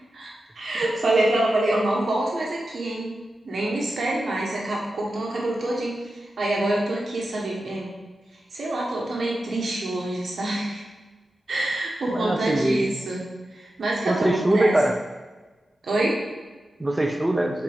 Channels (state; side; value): normal; both; correlation 0.91